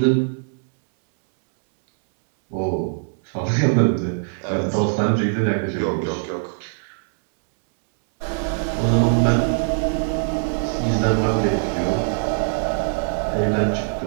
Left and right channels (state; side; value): silent; left; 64 dB below the other